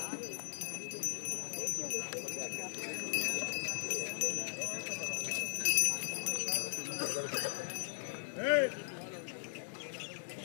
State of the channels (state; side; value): silent; right; digital silence